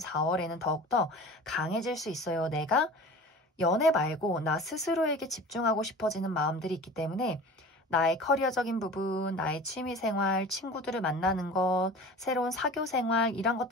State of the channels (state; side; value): normal; both; correlation 0.39